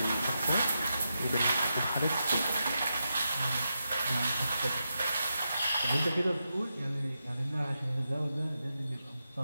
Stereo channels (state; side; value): inverted; both; correlation -0.87